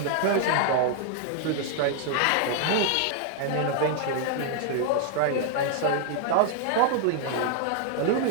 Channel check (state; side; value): different; both; correlation 0.00